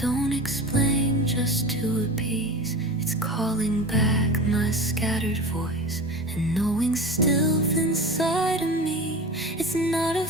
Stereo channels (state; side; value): normal; both; correlation 0.31